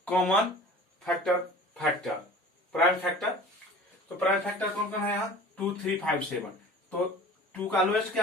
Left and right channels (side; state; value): both; normal; correlation 0.42